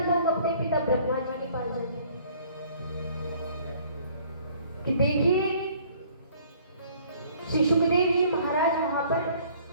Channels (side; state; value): both; inverted; correlation -0.57